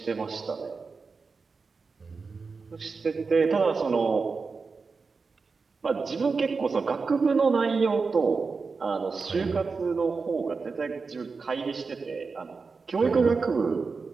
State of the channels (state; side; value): quieter; left; 4.6 dB